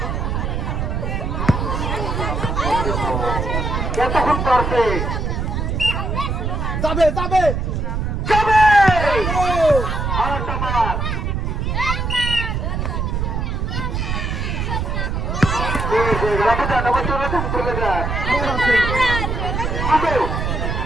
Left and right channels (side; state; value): right; noise; rumble, 1 dB below the sound